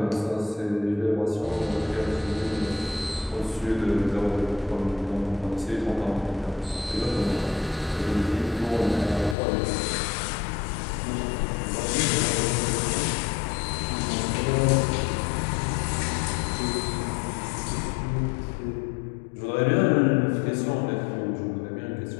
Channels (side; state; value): right; drops out; at 9.3 s